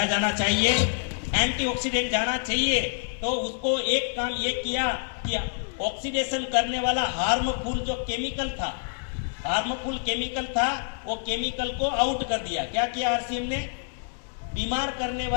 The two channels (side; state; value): right; silent; digital silence